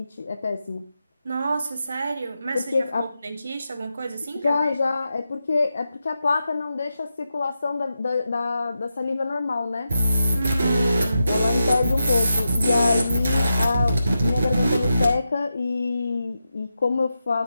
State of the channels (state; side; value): inverted; both; correlation -0.89